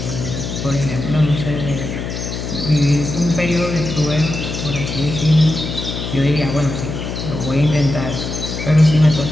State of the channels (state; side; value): noise; left; hum, 6 dB below the sound